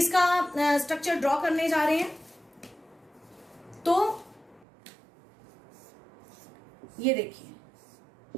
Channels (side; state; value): left; drops out; at 4.7 s